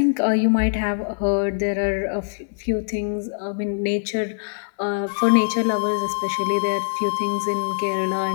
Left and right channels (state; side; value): silent; right; 59 dB below the other